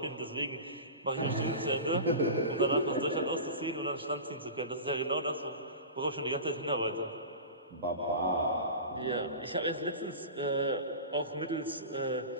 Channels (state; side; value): inverted; both; correlation -0.31